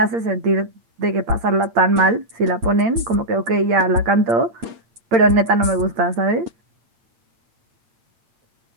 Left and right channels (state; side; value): late; left; 8.6 ms